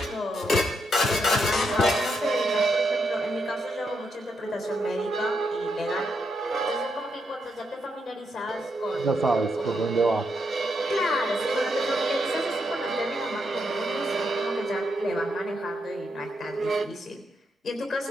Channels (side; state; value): both; normal; correlation 0.80